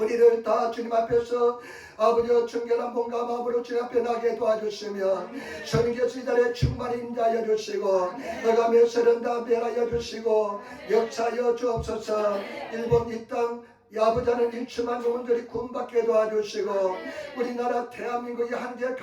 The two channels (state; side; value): identical; both; correlation 1.00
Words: 다 주님 앞에서 아버지와 정결한 몸과 마음으로 주님 앞에 나게 도와주시며 성령께서 이 자리에 충만히 임하여 주시고 너가며 세련다 변하여 주시고 역사하여 주옵소서. 일본 이 땅 아버지는 일침한 영혼들이 구원받게 도와주시고 우리나라 대한민국이 한결